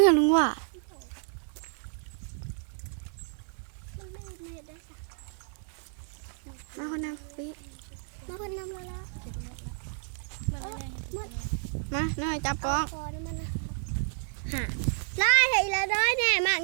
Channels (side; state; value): left; silent; digital silence